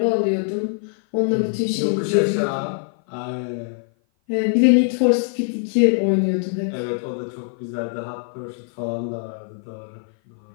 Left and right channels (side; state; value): right; silent; 55 dB below the other